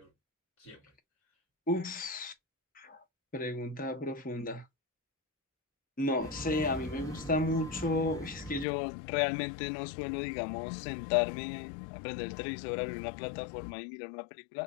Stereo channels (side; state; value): right; drops out; at 8.7 s